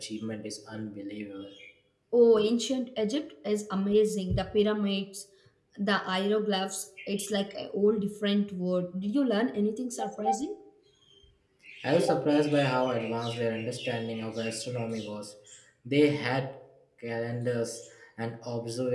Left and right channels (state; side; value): identical; both; correlation 1.00